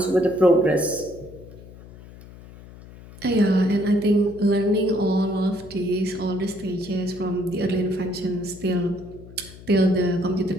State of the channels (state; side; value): noise; left; hum, 18 dB below the sound